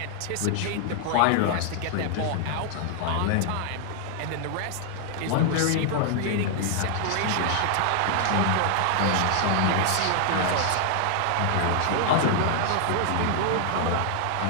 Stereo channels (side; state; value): both; different; correlation 0.00